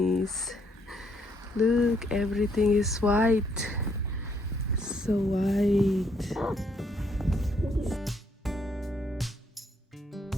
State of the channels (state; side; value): normal; both; correlation 0.71